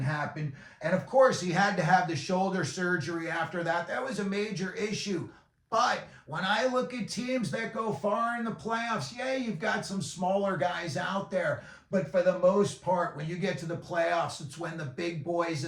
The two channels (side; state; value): both; identical; correlation 1.00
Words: happen. And of course, he had to have the shoulder surgery after that. That was a major issue. But when I look at teams that go far in the playoffs, yeah, you've got some smaller guys out there. But for the most part, when you get to the playoffs, it's when the big boys